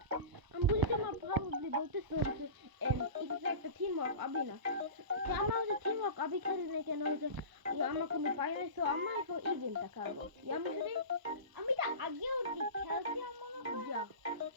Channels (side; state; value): left; late; 1.0 ms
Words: বুঝি তোমার প্রবাবলি বলতেছো হচ্ছে এটা একটা টিম ওয়ার্ক আবি না, আমার হচ্ছে টিম ওয়ার্ক আবি খেলি না কেন হচ্ছে আমার কোনো পাই নাই। সো আমার এখন এই গেমটা খেলবো। আমি যদি আমি তো আগেও খেলছি আমার যা